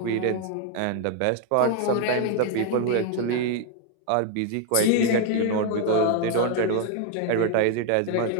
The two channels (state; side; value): different; both; correlation 0.01